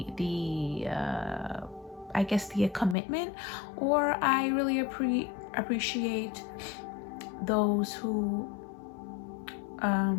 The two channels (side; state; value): right; drops out; at 3.0 s